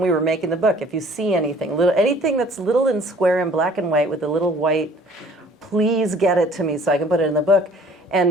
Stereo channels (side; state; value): both; normal; correlation 0.53